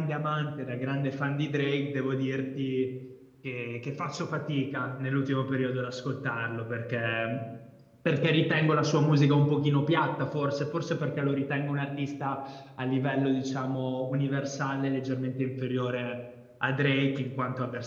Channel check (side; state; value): both; identical; correlation 1.00